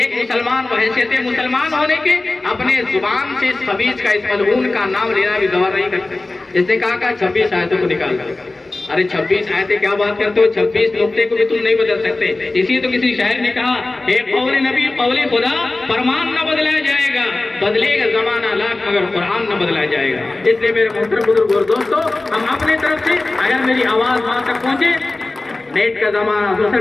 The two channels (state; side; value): quieter; right; 3.1 dB